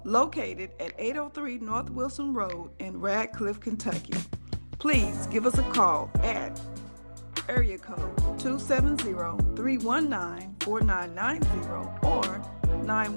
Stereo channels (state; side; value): inverted; both; correlation -1.00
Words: Located at 803 North Wilson Road in Radcliffe, Kentucky. Please give us a call at area code 270-319-4990 or